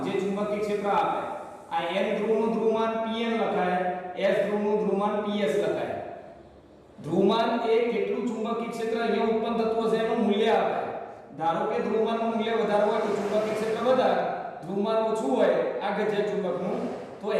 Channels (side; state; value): both; identical; correlation 1.00